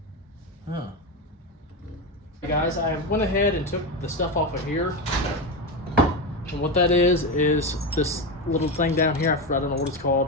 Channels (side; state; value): both; normal; correlation 0.15